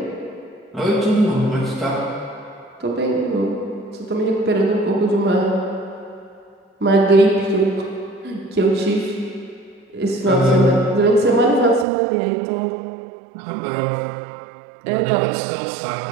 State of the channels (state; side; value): drops out; left; at 11.9 s